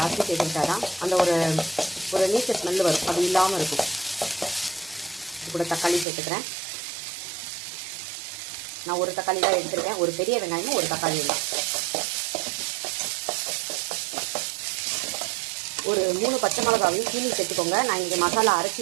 சேர்த்துக்கிட்டா தான் அந்த ஒரு நீச்ச ஸ்மெல்லு வரும், அது இல்லாமல் இருக்கும். இது கூட தக்காளி சேர்த்துக்கிறேன். நான் ஒரு தக்காளி தான் எடுத்துருக்கேன், ஒரு பெரிய வெங்காயமும் ஒரு தக்காளி தான். ஒரு 3 பச்சை மிளகாவையும் கீழே சேர்த்துக்கோங்க. நான் இங்கே மசாலா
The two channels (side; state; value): left; drops out; at 6.1 s